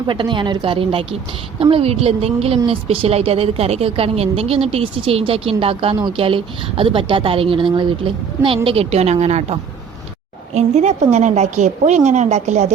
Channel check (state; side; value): quieter; left; 6.6 dB